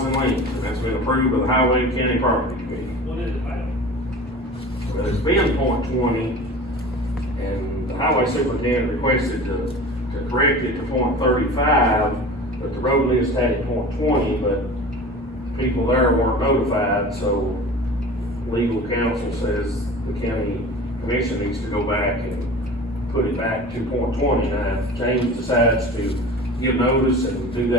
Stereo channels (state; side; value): normal; both; correlation 0.37